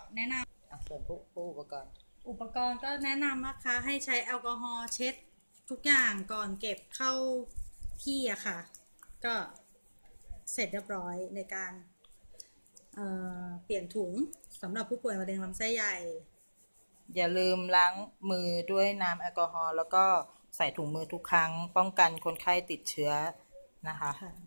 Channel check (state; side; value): inverted; both; correlation -1.00